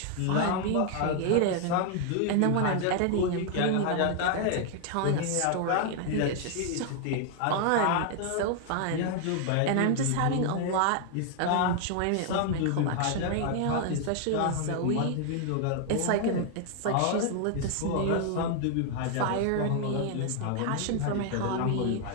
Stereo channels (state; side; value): different; both; correlation 0.00